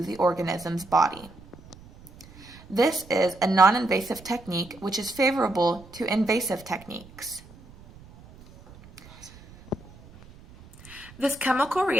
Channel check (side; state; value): right; noise; rumble, 22 dB below the sound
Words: the organism's body. This is a non-invasive technique which is favorable to invasive techniques. This chemical